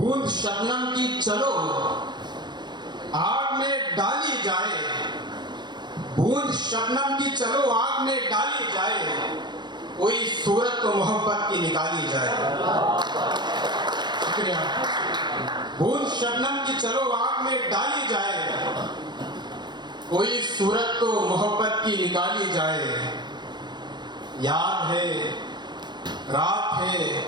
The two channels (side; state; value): left; late; 0.21 ms